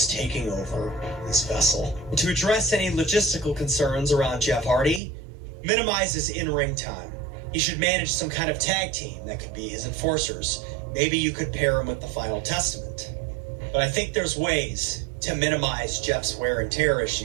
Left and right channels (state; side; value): drops out; left; at 5.0 s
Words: taking over this vessel. To address any logistical concerns around Jeff Hardy, minimize his in-ring time. He should manage some kind of tag team that could be his enforcers. Maybe you could pair him with the Final Testament. But I think there's ways to minimize Jeff's wear and tear